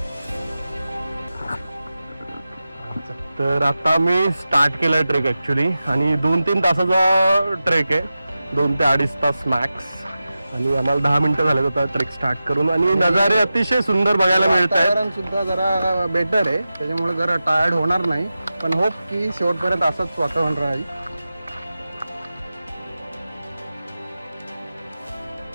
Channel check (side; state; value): both; inverted; correlation -0.93